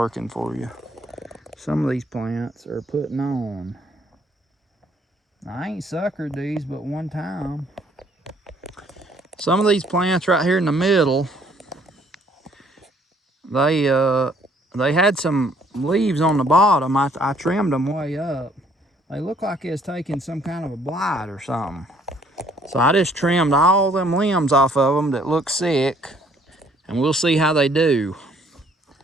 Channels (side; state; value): both; normal; correlation 0.63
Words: for you. Some of these plants are putting on. I ain't suckered these but one time. Some of these plants right here in the middle, they had some leaves on the bottom. I trimmed them way up. They look like it's taking some kind of a blight or something. So I just trimmed all them limbs off of them that look sick, and we'll see how they do.